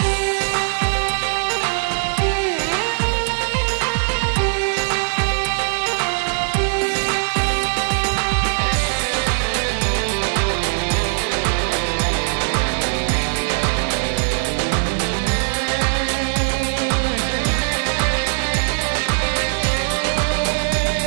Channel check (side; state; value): left; silent; digital silence